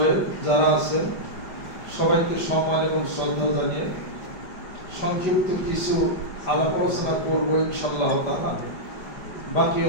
যারা আছেন সবাইকে সম্মান এবং শ্রদ্ধা জানিয়ে সংক্ষিপ্ত কিছু আলাপ আলোচনা করবো ইনশাআল্লাহ তাআলা। বাকি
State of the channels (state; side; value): late; right; 5.0 ms